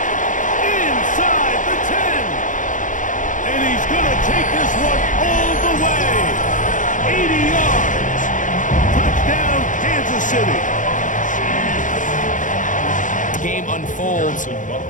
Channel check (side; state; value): right; late; 0.37 ms